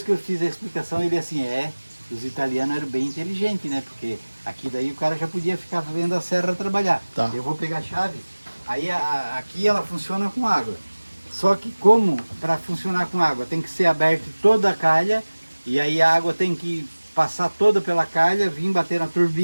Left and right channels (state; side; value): inverted; both; correlation -1.00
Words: que eu fiz a explicação, ele assim, os italianos eram bem inteligentes, né? Porque aqui daí o cara já podia ficar vendo a serra trabalhar. Tá. Eu vou pegar a chave, aí aqui ela funciona com água. Só que como para funcionar com água tem que ser aberto toda a calha, e aí a água tem que passar toda pela calha, vir bater na